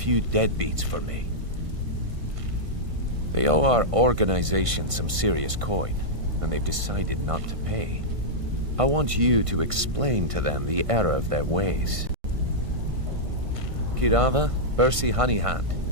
deadbeats for me? They owe our organization some serious coin, and they've decided not to pay. I want you to explain to them the error of their ways. Kirava, Bersi Honeyhand,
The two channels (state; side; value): late; left; 1.5 ms